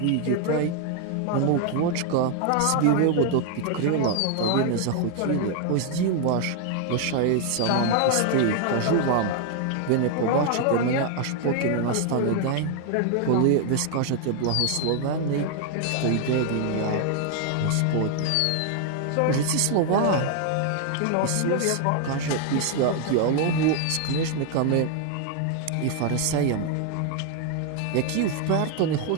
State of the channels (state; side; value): different; both; correlation 0.00